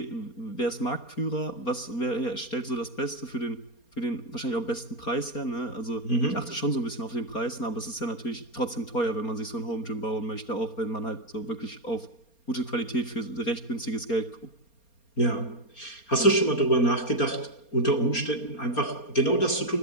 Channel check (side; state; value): right; late; 4.3 ms